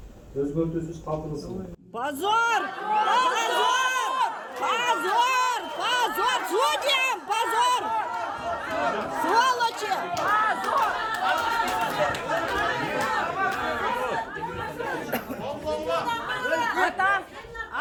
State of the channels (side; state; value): both; identical; correlation 1.00